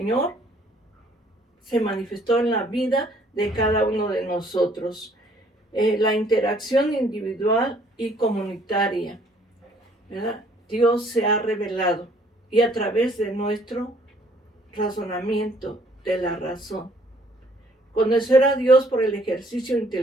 se manifestó en la vida de cada uno de nosotros. La interacción individual y comunitaria, ¿verdad? Dios se ha revelado y a través de nuestro razonamiento de la razón. Conocer a Dios por el ejercicio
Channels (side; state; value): both; normal; correlation 0.61